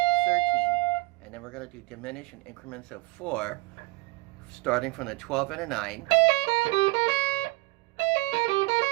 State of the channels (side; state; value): left; quieter; 22.4 dB